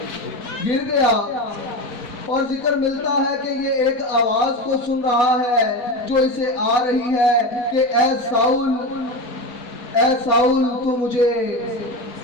गिर गया। और जिक्र मिलता है कि ये एक आवाज को सुन रहा है जो इसे आ रही है कि ऐ साउल तू मुझे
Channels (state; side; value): late; right; 4.3 ms